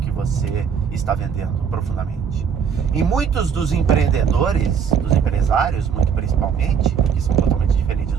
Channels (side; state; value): left; quieter; 7.1 dB